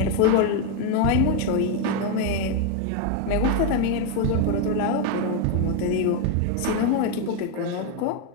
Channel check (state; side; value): different; both; correlation 0.02